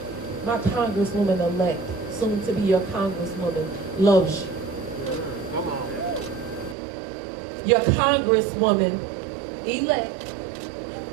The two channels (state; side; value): drops out; left; at 6.8 s